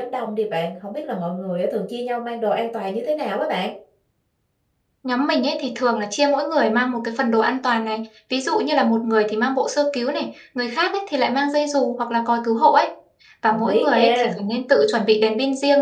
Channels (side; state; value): both; identical; correlation 1.00